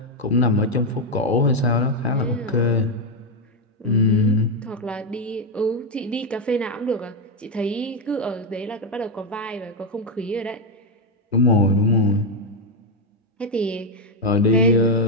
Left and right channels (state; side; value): normal; both; correlation 0.05